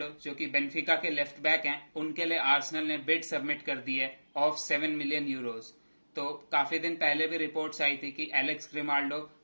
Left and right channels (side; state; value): both; inverted; correlation -1.00